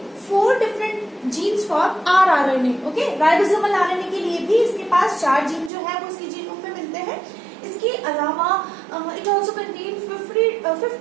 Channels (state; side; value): drops out; left; at 5.7 s